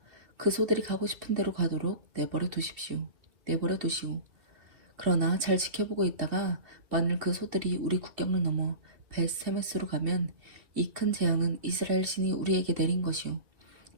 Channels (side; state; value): left; late; 2.7 ms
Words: 그 소들이 가고 싶은 대로 가도록 내버려 두시오. 그러나 잘 지켜보고 있다가 만일 그 소들이 우리 국경을 넘어 벳세메스로 가면 이 큰 재앙은 이스라엘 신이 우리에게 내린 것이요.